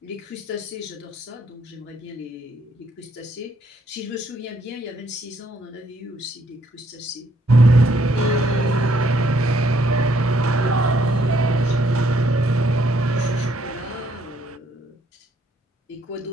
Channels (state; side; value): normal; both; correlation 0.69